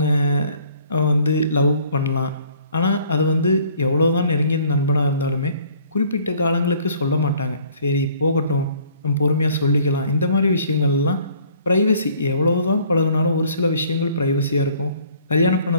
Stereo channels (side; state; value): both; inverted; correlation -0.57